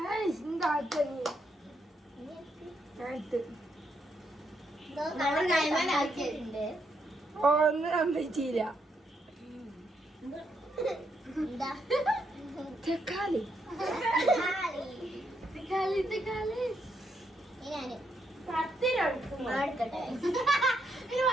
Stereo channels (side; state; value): both; normal; correlation 0.78